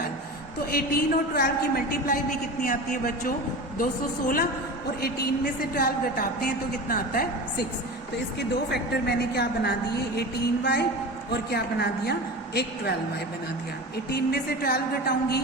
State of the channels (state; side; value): normal; both; correlation 0.31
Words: तो 18 और 12 की मल्टीप्लाई भी कितनी आती है बच्चों 216 और 18 में से 12 घटाते हैं तो कितना आता है 6, तो इसके दो फैक्टर मैंने क्या बना दिए 18y और क्या बना दिया एक 12y बना दिया। 18 में से 12 घटाऊंगी